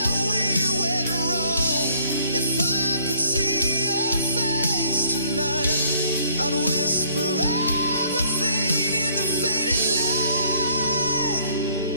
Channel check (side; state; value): both; inverted; correlation -0.62